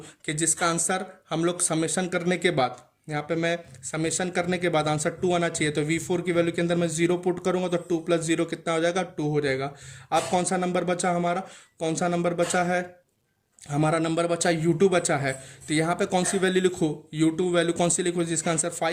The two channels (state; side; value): identical; both; correlation 1.00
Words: कि जिसका आंसर हम लोग समेशन करने के बाद, यहाँ पे मैं समेशन करने के बाद आंसर 2 आना चाहिए। तो V4 की वैल्यू के अंदर मैं 0 पुट करूंगा तो 2 प्लस 0 कितना हो जाएगा, 2 हो जाएगा। अब कौन सा नंबर बचा हमारा, कौन सा नंबर बचा है, हमारा नंबर बचा U2 बचा है। तो यहाँ पे कौन सी वैल्यू लिखूँ, U2 वैल्यू कौन सी लिखूँ जिसका आंसर